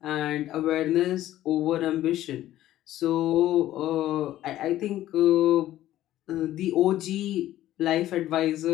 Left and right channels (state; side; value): quieter; right; 13.8 dB